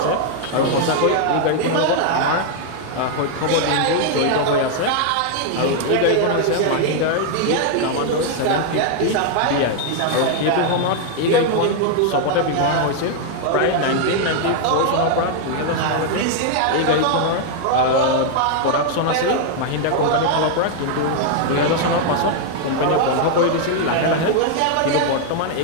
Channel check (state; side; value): different; both; correlation 0.00